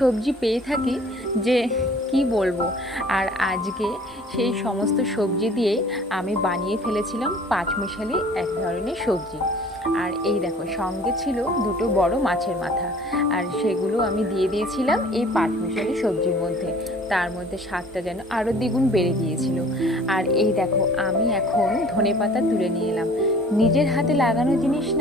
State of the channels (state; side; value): normal; both; correlation 0.50